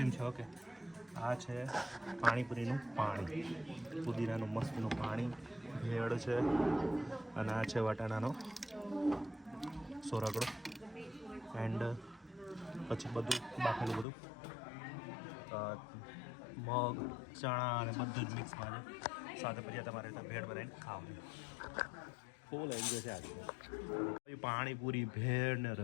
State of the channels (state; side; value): drops out; right; at 14.1 s